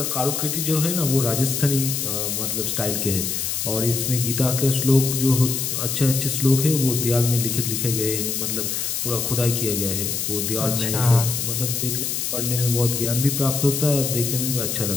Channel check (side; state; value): left; noise; hiss, 1 dB below the sound